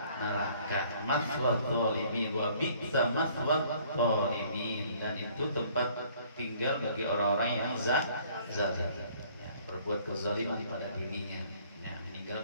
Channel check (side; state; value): both; inverted; correlation -0.58